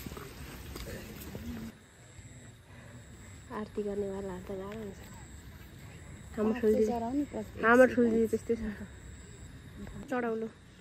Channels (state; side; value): identical; both; correlation 1.00